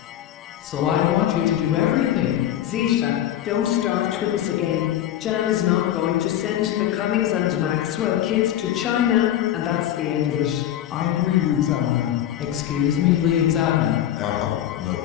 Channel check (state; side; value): quieter; right; 11.8 dB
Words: So I want you to do everything. Zeta, don't start with us again. Jan is not going to send the Cummings and Maxwell kids to China, and that's the end of it. I agree with Zana. Excuse me, Liam Zana. No.